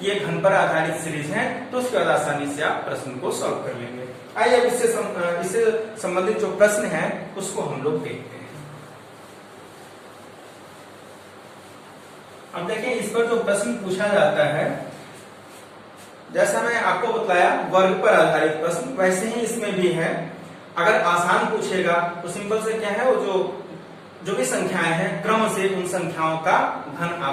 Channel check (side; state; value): both; identical; correlation 1.00